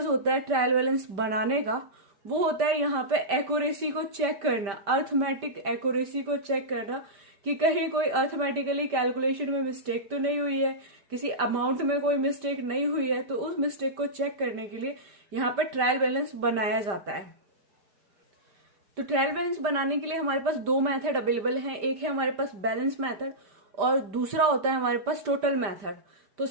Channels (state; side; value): late; left; 5.1 ms